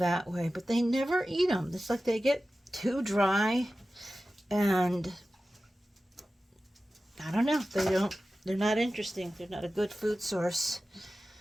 way. But they never eat them. It's like they get too dry, and I don't know. They're not interesting. They're not a good food source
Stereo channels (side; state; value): both; normal; correlation 0.95